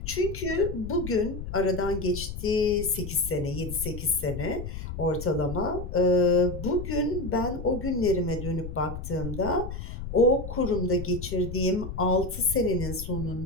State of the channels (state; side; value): noise; left; rumble, 8 dB below the sound